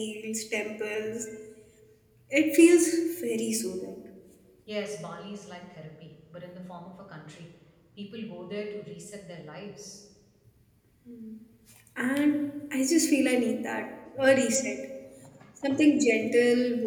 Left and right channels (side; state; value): both; identical; correlation 1.00